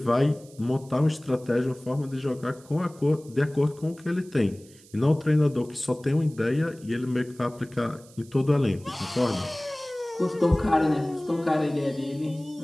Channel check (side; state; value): right; noise; hiss, 25 dB below the sound